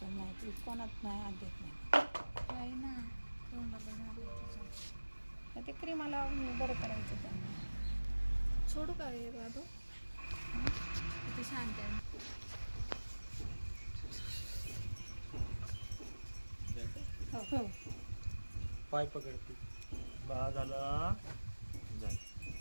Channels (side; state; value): both; inverted; correlation -1.00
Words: नाही. ती कोणात नाही हात देत नाही. आहे ना तोंडाला झालं त्याच्या. तर ते क्रीमा लावून बरं करायचं त्यांना. सोडू का रे बाबू? किती शांत आहे. हो पाय पकडते. बा झाला